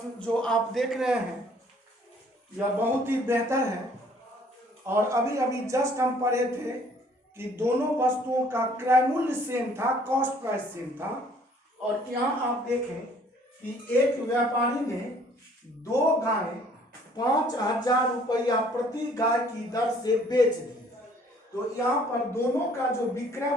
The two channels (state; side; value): normal; both; correlation 0.59